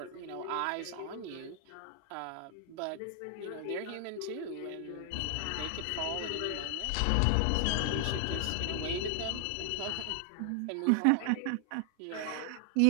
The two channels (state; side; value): different; both; correlation 0.00